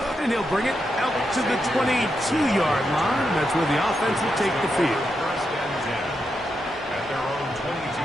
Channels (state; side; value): normal; both; correlation 0.84